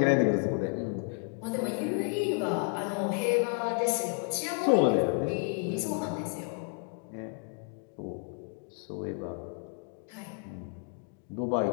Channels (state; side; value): quieter; right; 38.5 dB